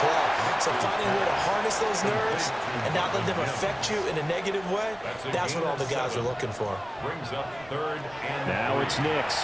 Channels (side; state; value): right; noise; rumble, 24 dB below the sound